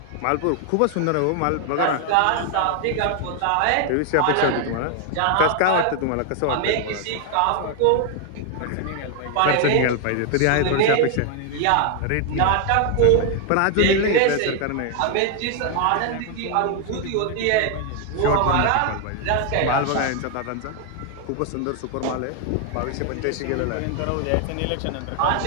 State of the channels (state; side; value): different; both; correlation 0.00